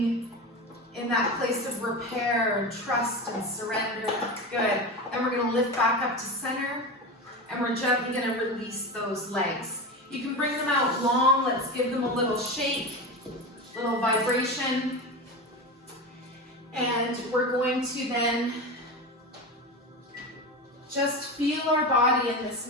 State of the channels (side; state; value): both; normal; correlation 0.23